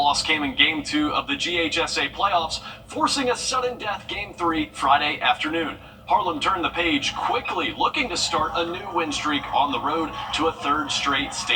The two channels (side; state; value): both; identical; correlation 1.00